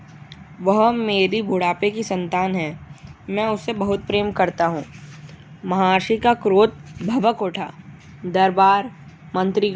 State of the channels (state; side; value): identical; both; correlation 1.00